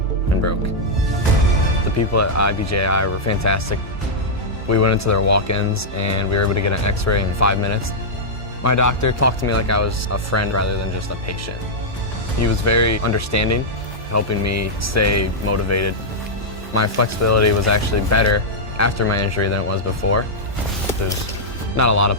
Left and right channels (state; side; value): normal; both; correlation -0.06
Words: and broke. The people at IBJI were fantastic. We went into their walk-ins and we were able to get an x-ray in 5 minutes. My doctor talked to me like I was a friend rather than just a patient. He was very understanding, helping me stay motivated. My flexibility was actually better after my injury than it was before. There's not a lot